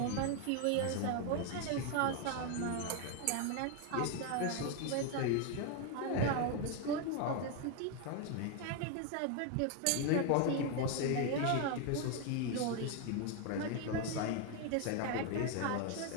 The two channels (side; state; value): both; different; correlation 0.01